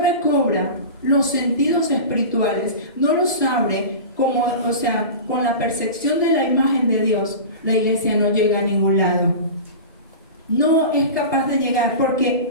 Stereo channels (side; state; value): both; inverted; correlation -0.31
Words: los sentidos espirituales, no los abre con la percepción de la imagen de Dios, la iglesia no llega a ningún lado. No es capaz de llegar, porque